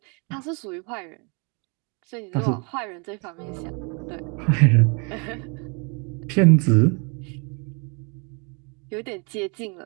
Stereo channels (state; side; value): quieter; left; 33.7 dB